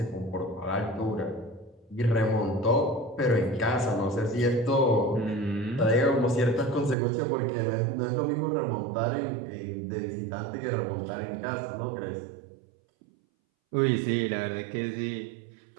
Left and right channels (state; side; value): drops out; left; at 7.0 s